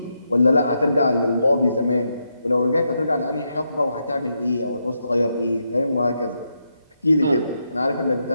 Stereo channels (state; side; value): inverted; both; correlation -0.82